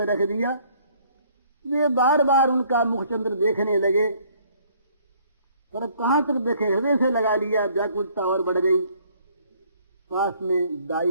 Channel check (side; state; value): both; inverted; correlation -0.61